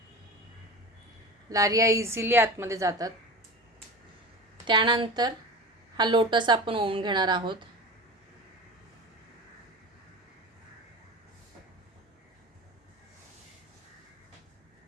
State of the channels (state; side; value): normal; both; correlation 0.32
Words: लारिया इझिली आतमध्ये जातात. त्यानंतर हा लोटस आपण ओवून घेणार आहोत.